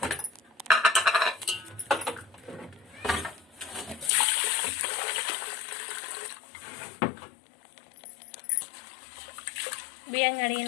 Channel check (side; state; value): right; drops out; at 4.1 s